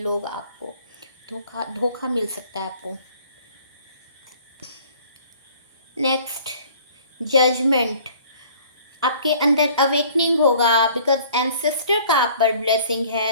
आपको धोखा धोखा मिल सकता है आपको। नेक्स्ट, जजमेंट, आपके अंदर अवेकनिंग होगा, बिकॉज एंसेस्टर का आप पर ब्लेसिंग है,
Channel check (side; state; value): both; inverted; correlation -0.53